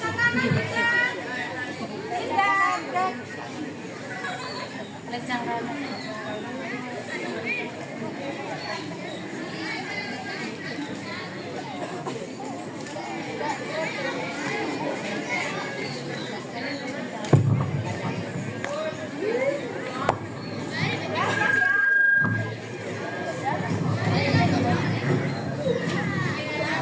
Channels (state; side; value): identical; both; correlation 1.00